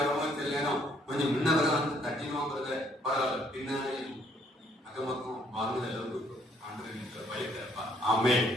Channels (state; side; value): normal; both; correlation 0.66